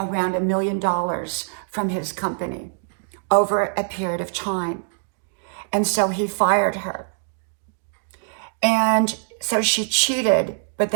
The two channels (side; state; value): left; silent; digital silence